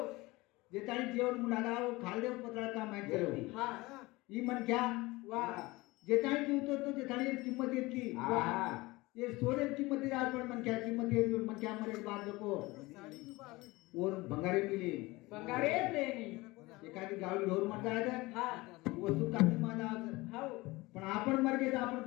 जे ताणी जेवण मुलागा खाल देव पत्राळ का माहिती झालं हा ही मन घ्या वा जे ताणी जीवतो तो जे ताणी किंमत येतकी हा. ये सोने किंमत येत आज पण मन क्या किंमत येत मन क्या मरे बाद को और भंगारे मिले बंगारे लेनी एखादी गावी ढोर मर जायचं हा वस्तू कामी माझा हो पण आपण मर गेलो आपण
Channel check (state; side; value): quieter; right; 21.6 dB